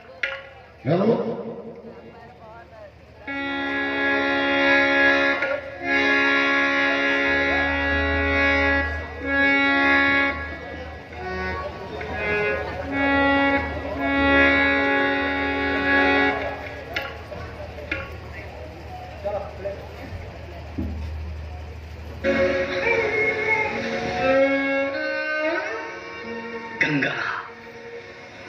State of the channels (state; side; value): identical; both; correlation 1.00